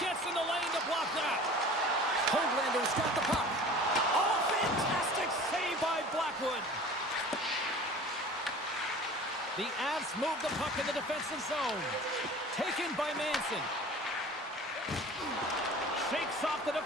gets in the lane to block that. Hoaglander's got the puck. Oh, fantastic save by Blackwood. The Avs move the puck in the defensive zone. Taken by Manson. Shakes off the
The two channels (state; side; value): normal; both; correlation 0.42